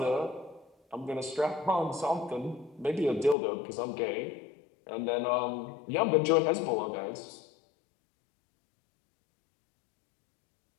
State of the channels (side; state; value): right; drops out; at 3.4 s